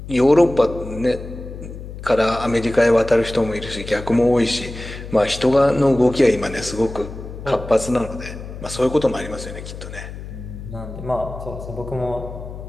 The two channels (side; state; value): left; noise; hum, 11 dB below the sound